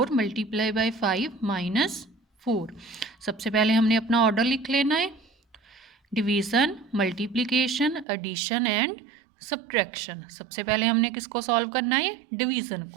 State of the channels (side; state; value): left; drops out; at 8.1 s